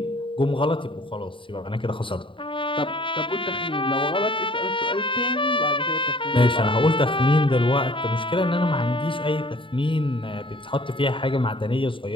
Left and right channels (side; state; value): right; late; 0.25 ms